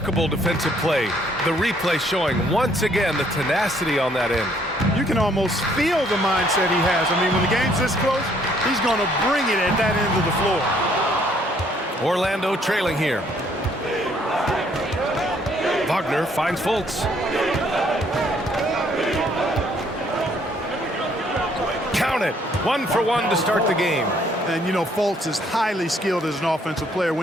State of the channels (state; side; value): normal; both; correlation 0.65